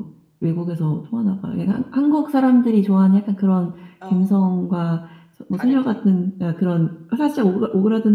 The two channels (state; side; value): identical; both; correlation 1.00